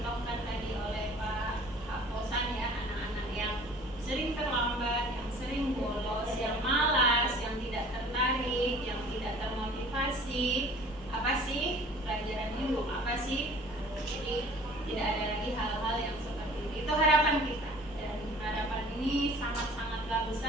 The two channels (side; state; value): both; normal; correlation 0.48